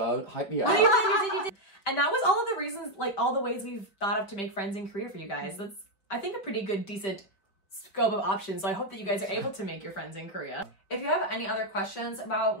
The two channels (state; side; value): late; right; 5.2 ms